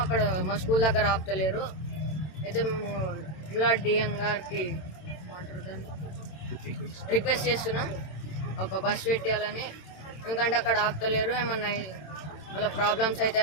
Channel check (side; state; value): right; late; 27 ms